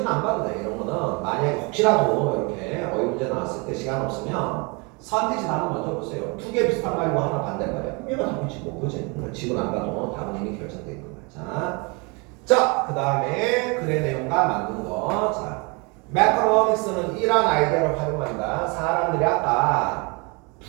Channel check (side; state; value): left; quieter; 30.1 dB